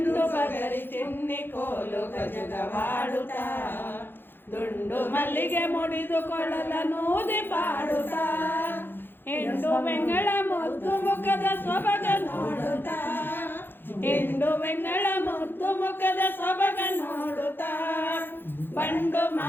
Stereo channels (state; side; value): late; right; 0.10 ms